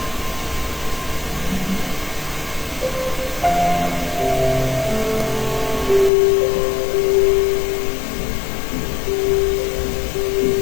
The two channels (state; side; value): drops out; right; at 6.1 s